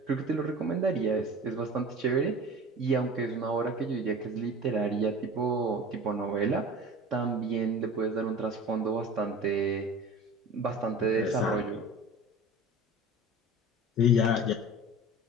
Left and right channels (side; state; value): both; normal; correlation 0.37